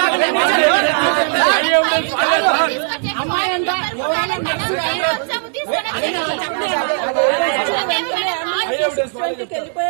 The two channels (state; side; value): silent; left; digital silence